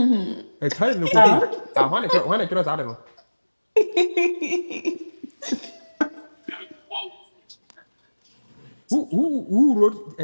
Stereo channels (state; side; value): inverted; both; correlation -1.00